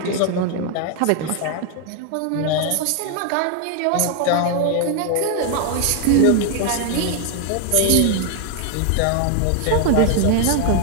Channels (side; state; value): both; different; correlation 0.00